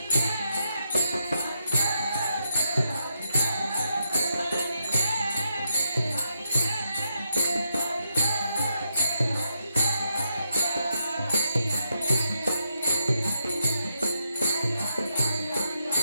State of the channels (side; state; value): both; inverted; correlation -0.81